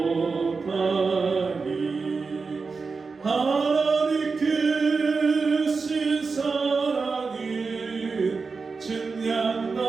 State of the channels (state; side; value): quieter; left; 4.6 dB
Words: 하나님 크신 사랑은